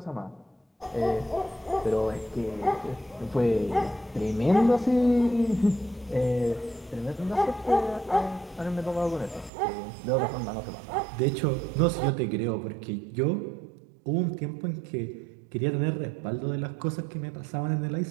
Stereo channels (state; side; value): drops out; left; at 9.5 s